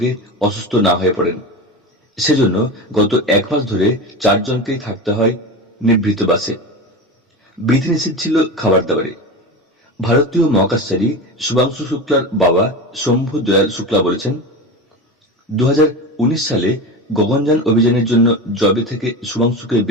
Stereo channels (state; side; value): normal; both; correlation 0.25